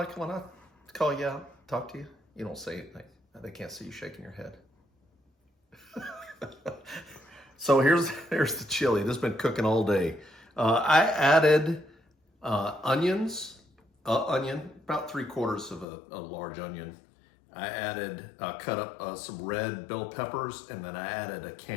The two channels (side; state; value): right; drops out; at 15.9 s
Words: when I call you out, talk to you? You don't say anything. They can't see you shaking your head. So here's the chili. This has been cooking all day. I added onions, onion, about 3/4 of a large onion. I added, cut up some red bell peppers, and then I added a